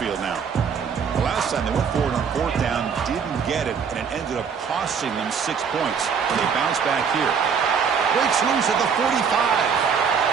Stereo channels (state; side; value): quieter; left; 6.5 dB